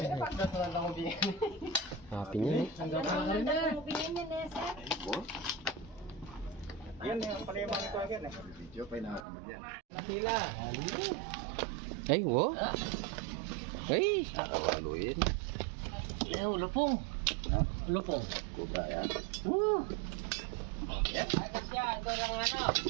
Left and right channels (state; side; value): drops out; left; at 9.2 s